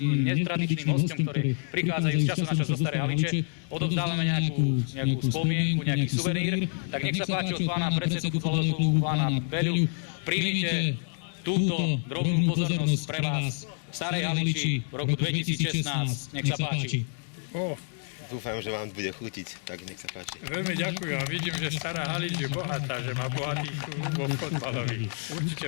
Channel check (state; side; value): silent; right; 59 dB below the other